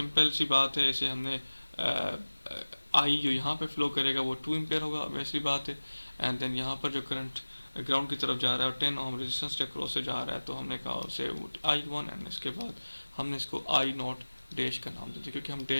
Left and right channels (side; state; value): both; inverted; correlation -1.00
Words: सी बात है, इसे हमने आई जो यहाँ पे फ्लो करेगा वो 2 एम्पेयर होगा, वैसी बात है। एंड देन यहाँ पर जो करंट ग्राउंड की तरफ जा रहा है और 10 ओम रेजिस्टेंस के क्रॉस से जा रहा है, तो हमने कहा उसे I1, एंड इसके बाद हमने इसको I नॉट डैश का नाम दे दिया, क्योंकि हम